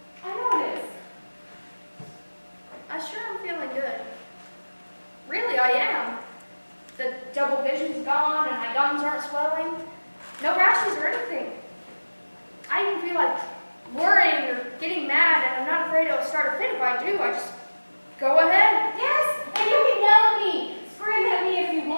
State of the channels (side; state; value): both; inverted; correlation -1.00